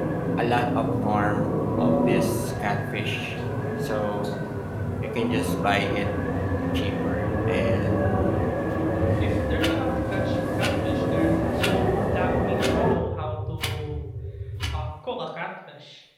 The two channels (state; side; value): identical; both; correlation 1.00